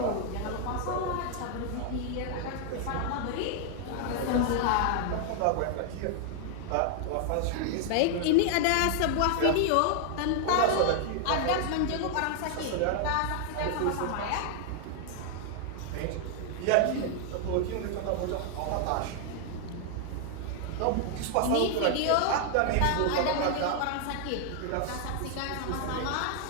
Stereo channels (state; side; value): different; both; correlation 0.00